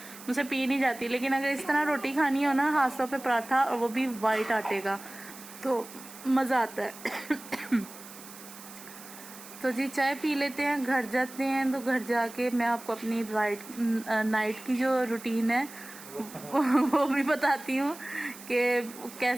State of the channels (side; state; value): right; noise; hiss, 16 dB below the sound